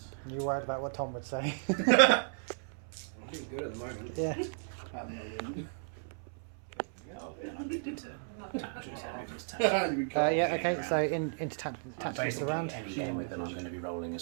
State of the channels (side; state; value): left; silent; 55 dB below the other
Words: You worried about what Tom would say? I'm doing good at the moment. Yeah. Oh, then I need to tactics. Yeah, okay, so into tactics of the Basically, round. any game with them, I'm going to be rolling